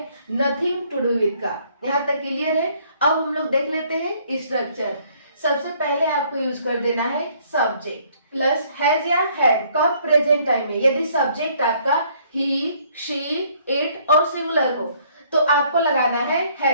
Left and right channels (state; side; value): inverted; both; correlation -0.63